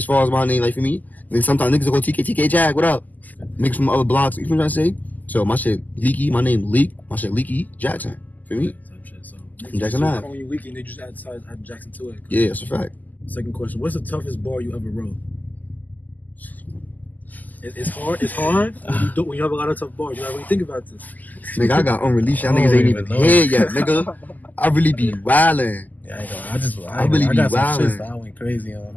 far as my name, like for me, then sometimes niggas will go TK Jag, what up? Niggas from other blocks, you know what I'm trying to say? So my shit Leeky, my name Leek, my shit Leeky Jackson. For me? So Jackson Ave. When you Leeky, they just add Jackson to it. Yeah, that's a fact. Second question, what's the toughest bar you ever wrote? It's hard when you have a lot of tough bars. You gotta really think about this. Nigga, I got unreleased. Y'all niggas ain't even here yet, nigga. I really be wildin'. Yeah, I really be wildin'. I went crazy on.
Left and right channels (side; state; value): right; late; 0.082 ms